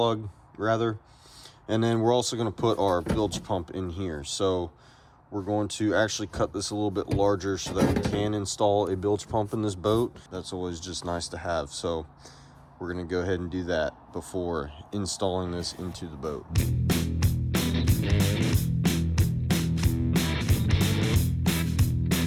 rather. And then we're also gonna put our bilge pump in here. So we're going to actually cut this a little bit larger so that we can install a bilge pump in this boat. That's always just nice to have. So we're gonna go ahead and do that before installing this into the boat.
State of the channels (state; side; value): identical; both; correlation 1.00